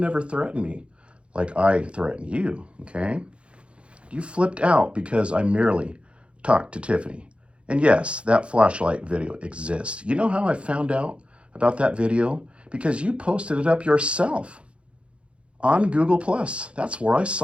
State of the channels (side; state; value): left; late; 0.059 ms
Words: threatened me like I threatened you, okay? You flipped out because I merely talked to Tiffany. And yes, that flashlight video exists. You know how I found out about that video? Because you posted it up yourself on Google+. That's where I